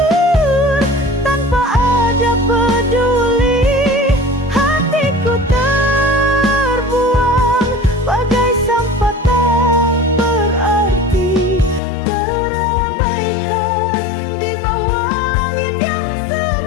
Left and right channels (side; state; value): right; drops out; at 11.8 s